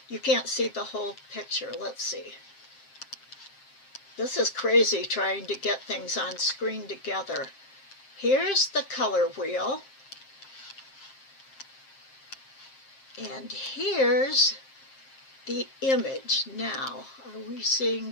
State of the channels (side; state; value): right; late; 7.5 ms